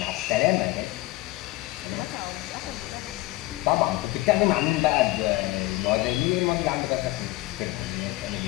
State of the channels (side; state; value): right; quieter; 19.2 dB